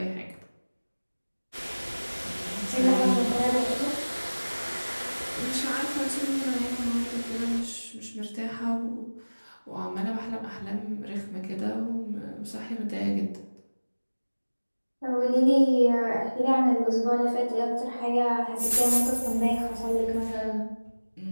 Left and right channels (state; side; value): inverted; both; correlation -1.00